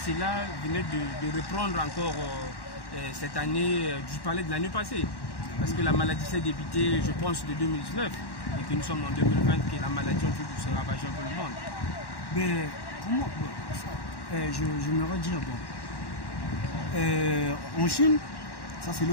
venait de reprendre encore cette année, je parlais de l'année passée, parce que la maladie s'est débutée, je pense, de 2019, et que nous sommes en 2020, que la maladie en train de se ravager un peu le monde. Mais comment j'aimerais dire, en Chine, ça c'est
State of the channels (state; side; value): late; right; 1.1 ms